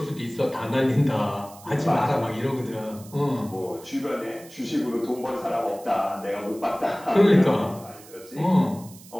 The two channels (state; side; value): noise; right; hiss, 20 dB below the sound